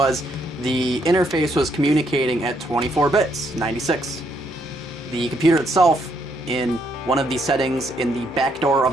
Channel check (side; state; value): both; normal; correlation 0.73